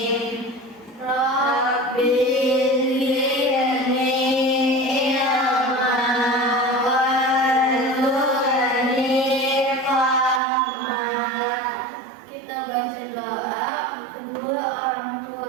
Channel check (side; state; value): left; drops out; at 10.4 s